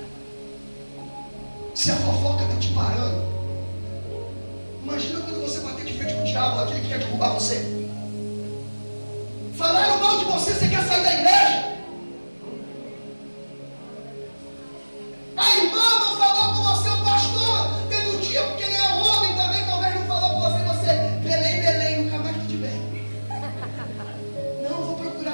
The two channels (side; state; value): both; inverted; correlation -1.00